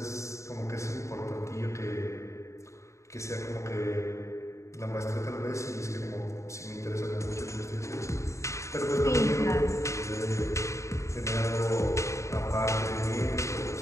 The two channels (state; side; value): late; right; 0.14 ms